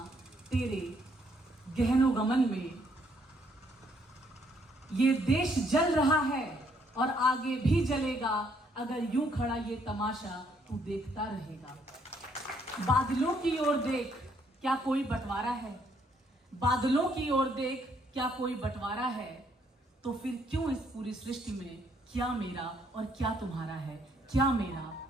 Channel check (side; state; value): both; normal; correlation 0.69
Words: तेरे गहनो गमन में। ये देश जल रहा है और आगे भी जलेगा, अगर यूं खड़ा ये तमाशा तू देखता रहेगा। बादलों की ओर देख क्या कोई बंटवारा है, बादलों की ओर देख क्या कोई बंटवारा है, तो फिर क्यों इस पूरी सृष्टि में क्या मेरा और क्या तुम्हारा है, क्या मेरा